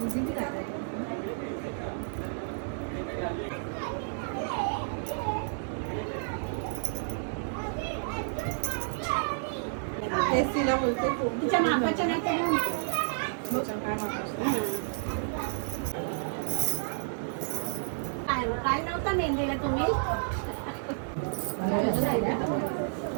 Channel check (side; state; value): left; silent; digital silence